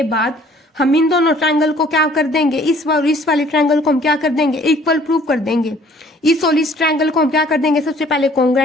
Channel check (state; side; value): normal; both; correlation 0.56